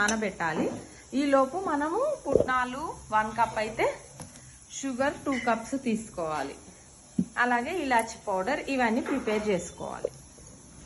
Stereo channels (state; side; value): identical; both; correlation 1.00